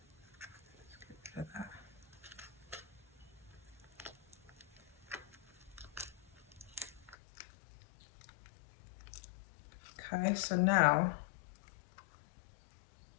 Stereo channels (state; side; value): drops out; right; at 7.2 s